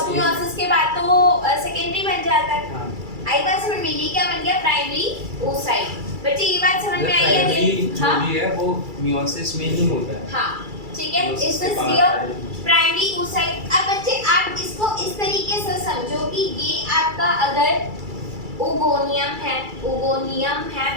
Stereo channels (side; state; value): left; late; 2.3 ms